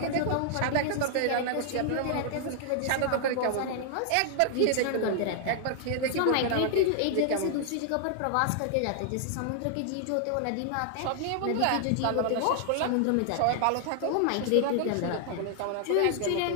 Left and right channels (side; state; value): both; different; correlation 0.00